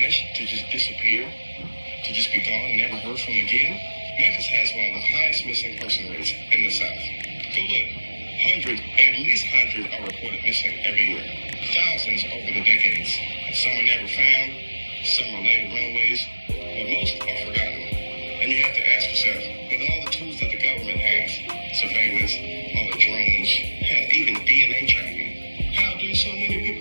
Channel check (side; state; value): both; inverted; correlation -1.00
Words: to just disappear, to just be gone and never heard from again? Memphis has one of the highest missing person rates in the South. Go look. At least 100 are reported missing every year. Thousands over the decades. Some are never found, some are laid runaways, but most are forgotten. And you have to ask yourself, with all the tools that the government has, surveillance, all the drones, hell, even DNA tracking, how do so many